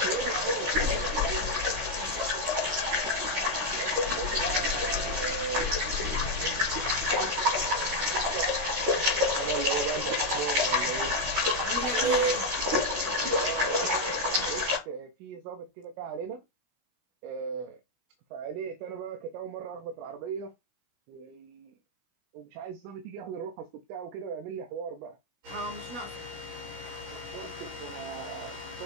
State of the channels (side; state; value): left; late; 16 ms